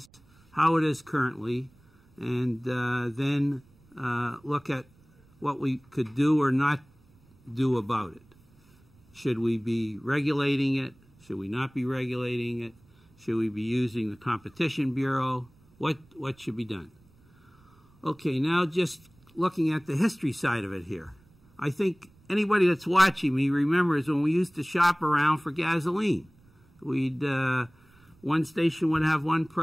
how it is currently, and then look at what we could do or not do about it. Should we be regulating it? Should we not be regulating it? Should we be using the Competition Bureau? What should be done? Okay, now just looking at the history side of it here. I think anybody that's watching me remembers when we used to shop around for gasoline. One station would have one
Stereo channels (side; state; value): right; noise; rumble, 30 dB below the sound